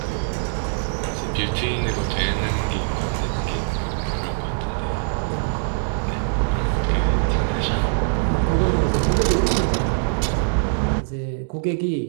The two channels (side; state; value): left; silent; digital silence